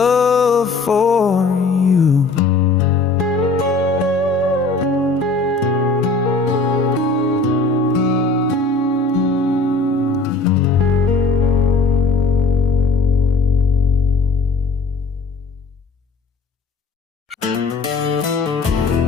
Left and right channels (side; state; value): right; quieter; 3.7 dB